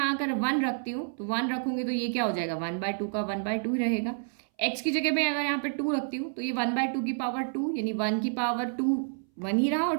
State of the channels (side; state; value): left; silent; 59 dB below the other